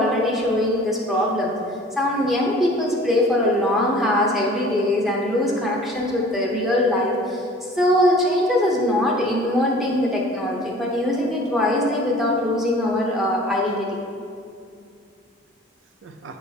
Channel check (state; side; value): normal; both; correlation 0.47